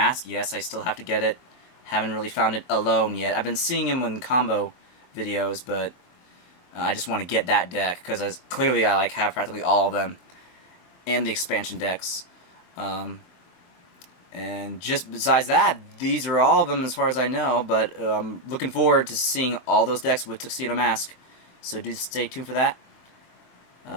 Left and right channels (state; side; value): late; right; 23 ms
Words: Yes, I still have to get it. Haven't really found it alone yet. I've been seeing him in combo videos, but I just want to get that deck, because clearly I like have practically all of them, and the expansion decks. And just besides that, these are all of them as far as I know, but I'm looking forward to seeing all those decks with Tuxedo Mask. So do stay tuned for that.